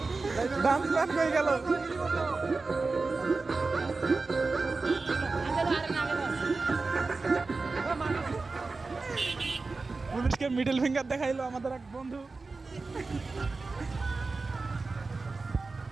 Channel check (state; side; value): quieter; left; 3.9 dB